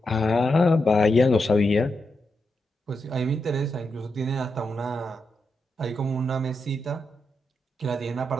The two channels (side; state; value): both; normal; correlation 0.85